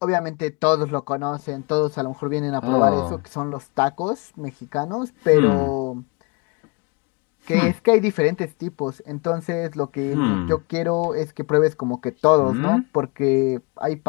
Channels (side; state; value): right; quieter; 29.9 dB